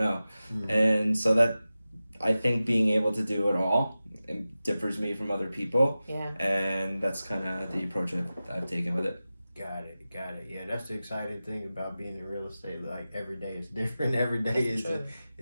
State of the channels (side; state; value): both; inverted; correlation -0.95